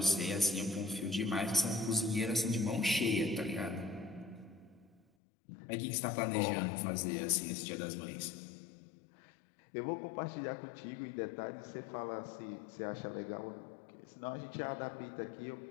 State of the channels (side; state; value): right; drops out; at 5.0 s